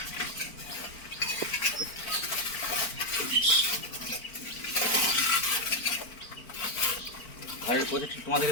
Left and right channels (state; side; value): late; right; 4.5 ms